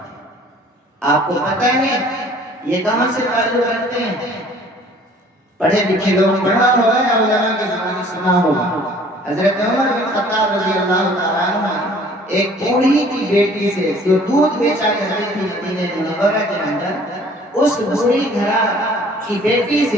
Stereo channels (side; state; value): both; normal; correlation 0.53